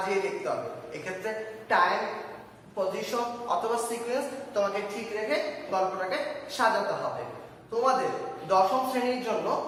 লিখতে হবে। এক্ষেত্রে টাইম, পজিশন অথবা সিকোয়েন্স তোমাকে ঠিক রেখে গল্পটাকে সাজাতে হবে। তোমাদের দশম শ্রেণীর জন্য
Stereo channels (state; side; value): identical; both; correlation 1.00